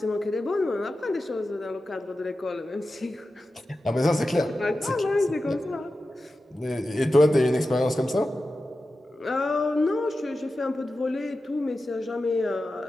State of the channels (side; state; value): both; normal; correlation 0.93